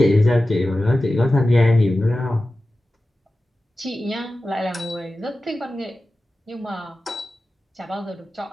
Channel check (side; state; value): both; normal; correlation 0.94